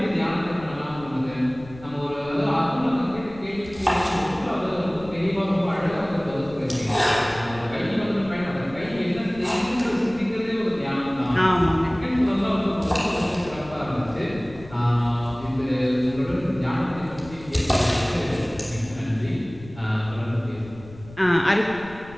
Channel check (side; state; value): left; noise; rumble, 18 dB below the sound